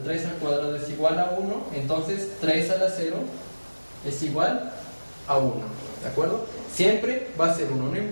al cuadrado es igual a 1, entonces 3 a la 0 es igual a 1, ¿de acuerdo? Siempre va a ser 1, no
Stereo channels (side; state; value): both; inverted; correlation -1.00